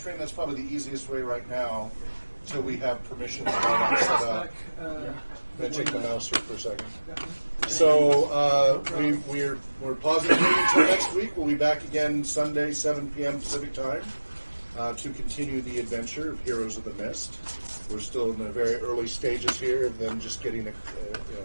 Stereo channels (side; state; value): both; inverted; correlation -1.00